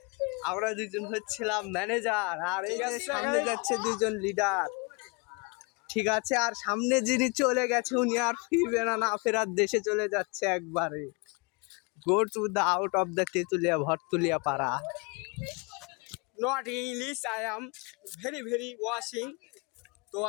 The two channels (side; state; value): right; quieter; 30.9 dB